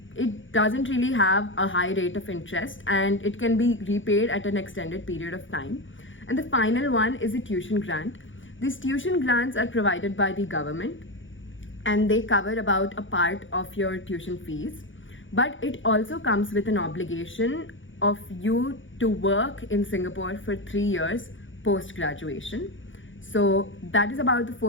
it doesn't really have a high rate of interest, and it can be repaid at an extended period of time. And the final one is a tuition grant. These tuition grants are provided by the government, and they cover about a part of your tuition fees, but it also comes with an obligation of you to work in Singapore for 3 years post-graduation. So that is about the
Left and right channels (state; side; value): late; right; 0.56 ms